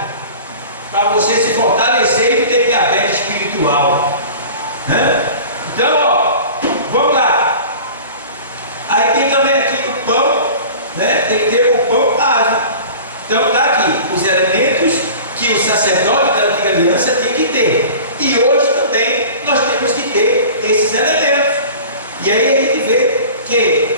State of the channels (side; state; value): both; inverted; correlation -0.40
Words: Para você se fortalecer e ter diabetes espiritual. Então, ó, vamos lá. Aí tem também aqui o pão, né? Tem que ter o pão asmo. Então tá aqui. E aí a gente vê